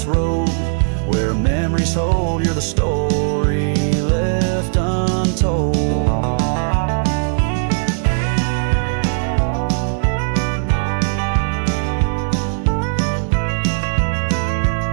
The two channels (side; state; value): left; silent; digital silence